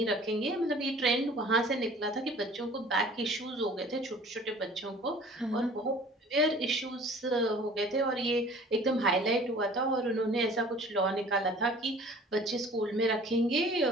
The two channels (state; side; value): normal; both; correlation 0.48